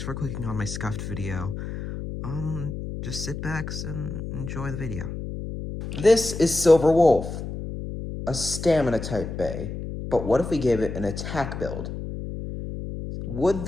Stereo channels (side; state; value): left; noise; hum, 7 dB below the sound